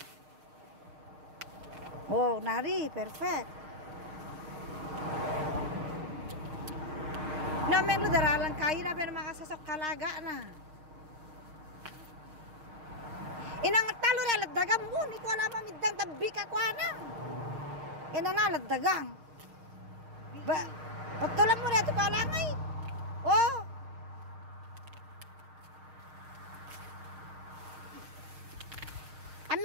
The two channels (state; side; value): late; left; 6.5 ms